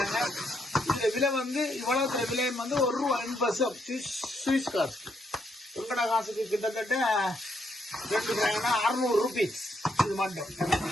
இதுல விலை வந்து இவ்வளவு விலை வந்து ₹1.50 சுவிஸ் காசு. உங்கட காசுக்கு கிட்டத்தட்ட 2 கிராம்னா ₹600. இது மட்டும்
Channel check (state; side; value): normal; both; correlation 0.76